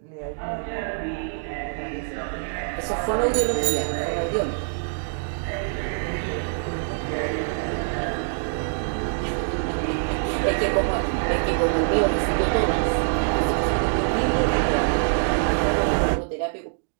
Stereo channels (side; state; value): left; silent; digital silence